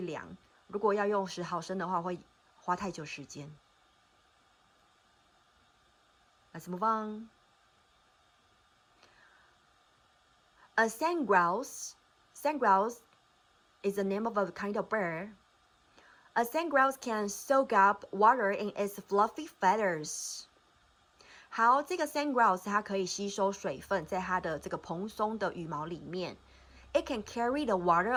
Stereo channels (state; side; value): identical; both; correlation 1.00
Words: 量，如果要用10毫升的话，会花太久时间。Let's move on. A sand grouse is the name of a kind of bird. A sandgrouse can soak up water in its fluffy feathers. 好，这个 sandgrouse 它可以吸收水分，在它的这个蓬松的羽毛里面。It can carry the water